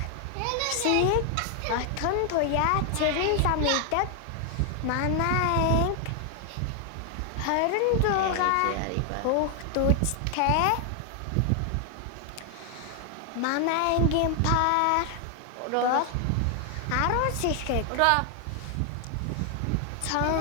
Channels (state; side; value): different; both; correlation 0.00